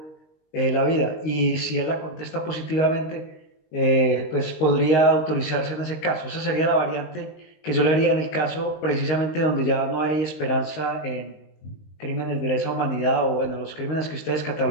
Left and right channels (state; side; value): late; right; 19 ms